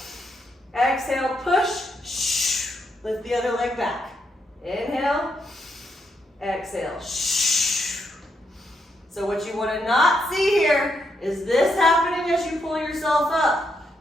exhale, push, lift the other leg back. Inhale, exhale, So what you want to not see here is this happening as you pull yourself up.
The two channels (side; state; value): both; normal; correlation 0.79